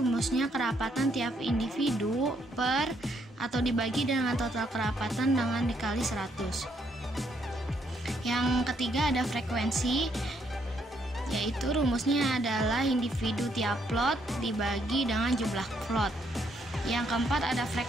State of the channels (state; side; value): normal; both; correlation 0.73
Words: kerapatan tiap individu per atau dibagi dengan total kerapatan dengan dikali 100. Yang ketiga ada frekuensi, yaitu rumusnya adalah individu tiap plot dibagi dengan jumlah plot. Yang keempat ada